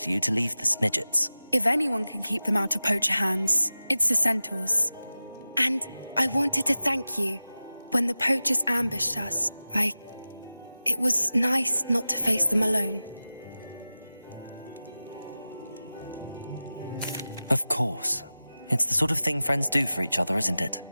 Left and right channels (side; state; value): both; inverted; correlation -0.95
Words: you to leave the Snidgets. If anyone can keep them out of poacher hands, it's the centaurs. And I wanted to thank you. When the poachers ambushed us, It was nice not to face them alone. Of course. It's the sort of thing friends do for each other, isn't it?